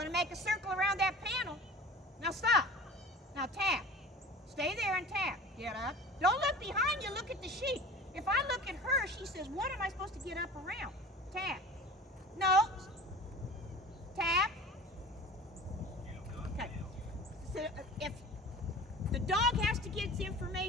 to make a circle around that panel, now stop. Now tap. Stay there and tap. Get up. Don't look behind you. Look at the sheep. If I look at her, she says, what am I supposed to get up around? Tap. No. Tap. Okay. So if the dog has to get its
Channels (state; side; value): normal; both; correlation 0.39